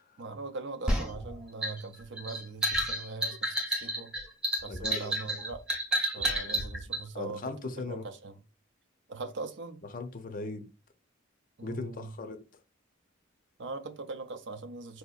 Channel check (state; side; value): normal; both; correlation 0.20